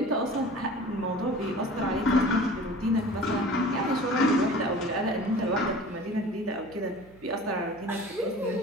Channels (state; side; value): noise; right; hum, 24 dB below the sound